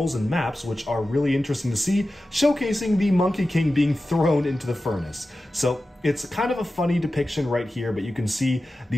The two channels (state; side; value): normal; both; correlation 0.94